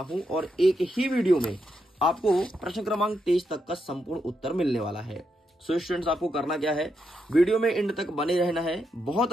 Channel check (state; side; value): normal; both; correlation 0.82